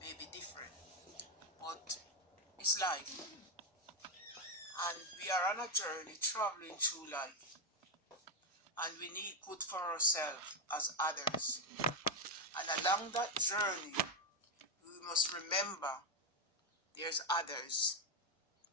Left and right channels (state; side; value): normal; both; correlation 0.05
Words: may be different, but it's life. And we are on a journey traveling through life. And we need good for ourselves as others. And along that journey, we must remember there's others.